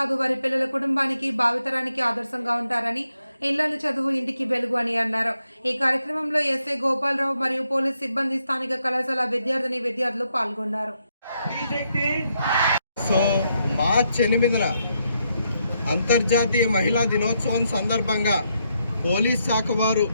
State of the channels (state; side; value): inverted; both; correlation -0.79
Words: వారి పిల్లల కుటుంబానికి భావితరానికి ఆదర్శంగా ఉంటారని, ఇళ్లలు చదువు ఇంటికి వెలుగు అని అన్నారు. ఈ కార్యక్రమంలో ఎస్ఐ గోపాలరావు మరియు పోలీస్ సిబ్బంది, స్థానిక కళాశాల విద్యార్థులు పాల్గొన్నారు. సో మార్చి 8న అంతర్జాతీయ మహిళా దినోత్సవం సందర్భంగా పోలీస్ శాఖ వారు